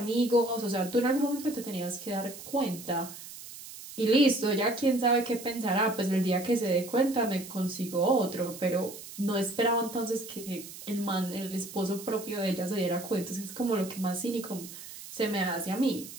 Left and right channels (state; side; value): noise; right; hiss, 14 dB below the sound